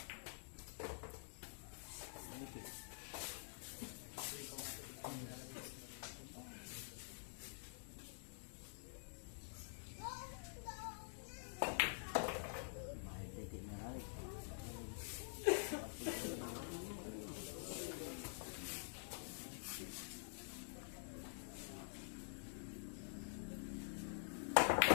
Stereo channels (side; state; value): right; silent; digital silence